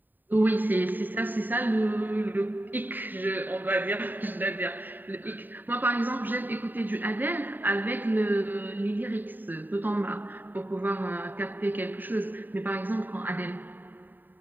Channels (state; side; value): late; left; 0.090 ms